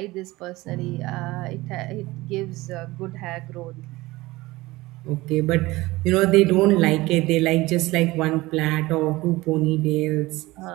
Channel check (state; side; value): quieter; left; 19.9 dB